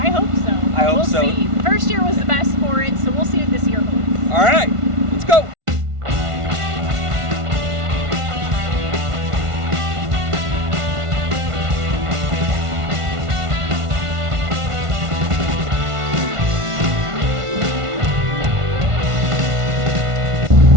hope so. I hope we'll so. See. The first year was the best for it, so we'll see what this year holds. All right, let's go.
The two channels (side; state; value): left; late; 1.5 ms